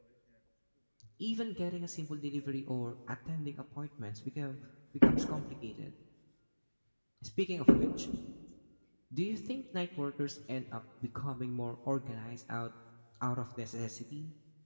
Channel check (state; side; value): inverted; both; correlation -1.00